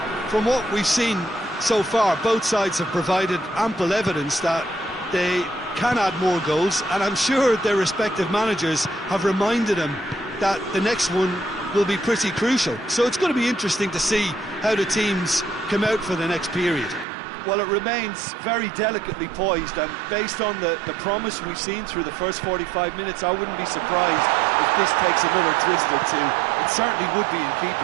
from what we've seen so far, both sides have provided ample evidence that they can add more goals, and I'm sure their respective managers have reminded them that the next one will be pretty crucial. So it's going to be interesting to see how the teams come out for the next period. Well, it remains very delicately poised, and based on the promise we've seen through the first 45 minutes, I wouldn't be surprised if this takes another twist or two. It certainly would be in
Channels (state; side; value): drops out; left; at 17.1 s